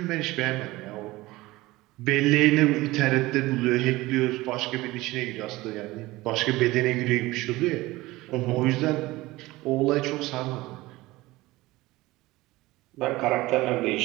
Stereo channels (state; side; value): quieter; left; 19.4 dB